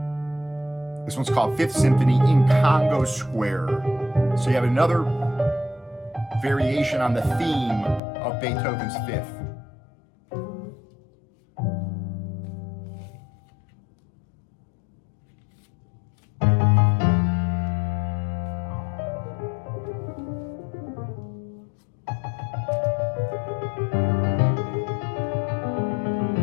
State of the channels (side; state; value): right; drops out; at 8.0 s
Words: This one's called Fifth Symphony in Congo Square. So you have another variation on the theme of Beethoven's Fifth.